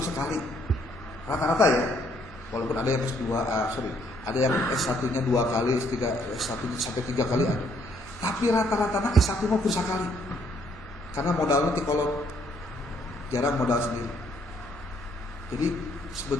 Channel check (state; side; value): normal; both; correlation 0.68